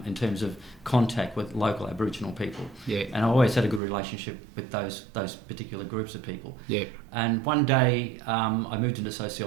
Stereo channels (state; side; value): drops out; left; at 3.8 s